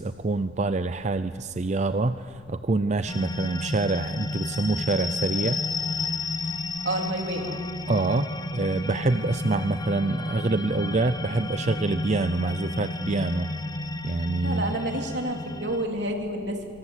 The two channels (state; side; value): noise; left; rumble, 22 dB below the sound